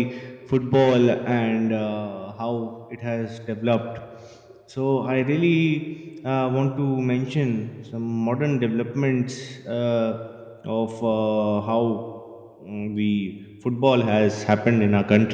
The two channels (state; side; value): identical; both; correlation 1.00